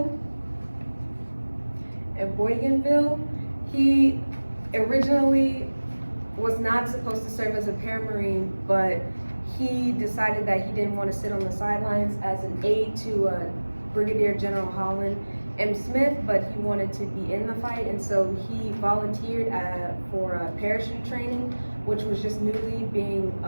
He originally was not supposed to serve as a paramarine, but he decided that he didn't want to sit on the sidelines as an aide to Brigadier General Holland M. Smith, but he wanted to be in the fight, and so he volunteered for parachute training, which was just newly being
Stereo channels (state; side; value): inverted; both; correlation -1.00